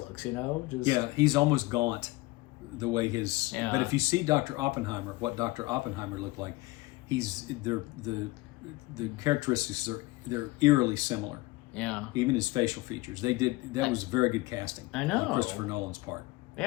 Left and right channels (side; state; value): right; quieter; 21.1 dB